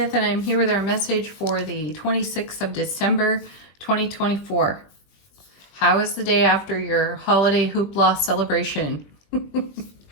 and I'm here with our message for the 26th of December, 2024. How is the day after your holiday hoopla celebration?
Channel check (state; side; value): late; right; 20 ms